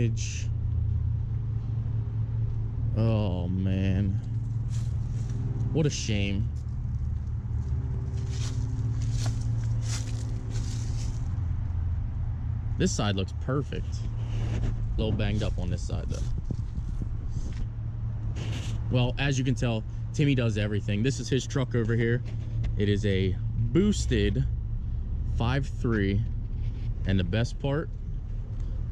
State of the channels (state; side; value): identical; both; correlation 1.00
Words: Oh, man. What a shame. This side looks perfect. A little banged up on this side, though. Well, as you can tell, Timmy does everything. This is his truck over here. It is a boosted 5.3. And the best part,